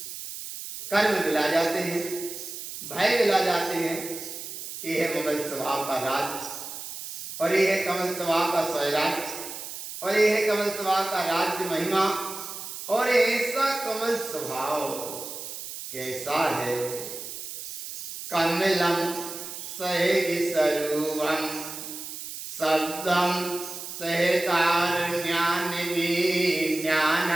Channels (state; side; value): noise; right; hiss, 9 dB below the sound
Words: कर्म मिला जाते हैं, भय मिला जाते हैं। ये है ममल स्वभाव का राज और ये है कमल स्वभाव का स्वराज और ये है कमल स्वभाव का राज्य महिमा। और ऐसा कमल स्वभाव कैसा है? कमलम सहज स्वरूपम शब्दम सहकार ज्ञान